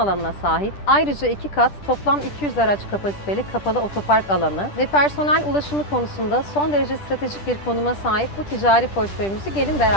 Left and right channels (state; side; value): late; right; 10 ms